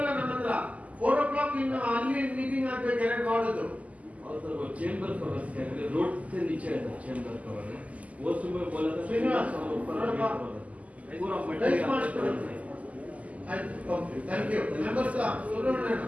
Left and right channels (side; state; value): left; late; 0.071 ms